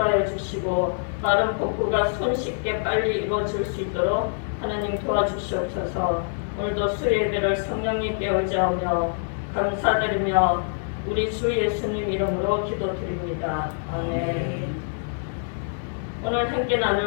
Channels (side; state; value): right; silent; digital silence